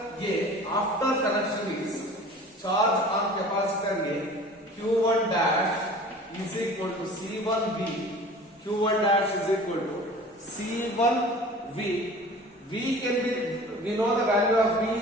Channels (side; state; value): both; normal; correlation 0.43